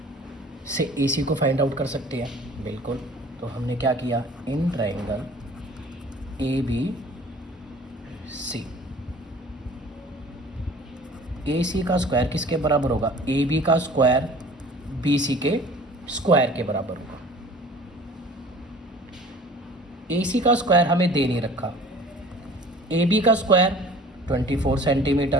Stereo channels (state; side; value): normal; both; correlation 0.47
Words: से ए सी को फाइंड आउट कर सकते हैं, बिल्कुल। तो हमने क्या किया, इन ट्रायंगल ए बी सी, ए सी का स्क्वायर किसके बराबर होगा, ए बी का स्क्वायर बी सी के स्क्वायर के बराबर होगा। ए सी का स्क्वायर हमें दे नहीं रखा, ए बी का स्क्वायर 24